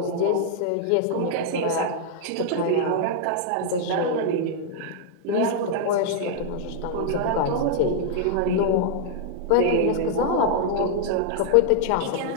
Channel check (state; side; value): different; both; correlation -0.01